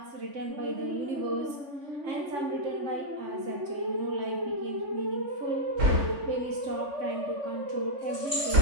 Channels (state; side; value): late; left; 3.6 ms